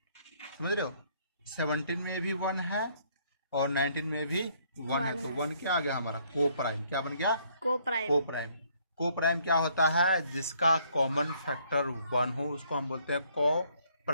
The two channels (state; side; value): inverted; both; correlation -0.66